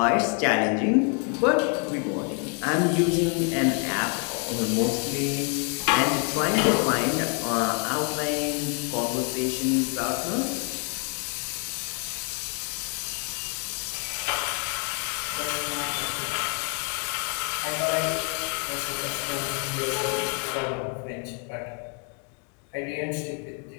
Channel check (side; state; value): right; quieter; 38.0 dB